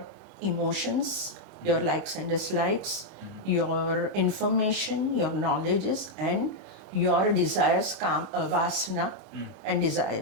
emotions, your likes and dislikes, your information, your knowledges, and your desires, vasana and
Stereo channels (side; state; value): both; normal; correlation -0.01